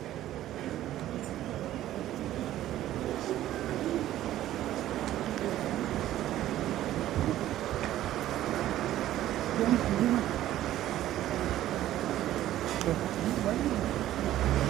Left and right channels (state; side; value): quieter; left; 13.4 dB